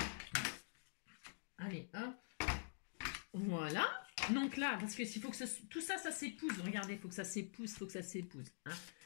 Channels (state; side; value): silent; right; digital silence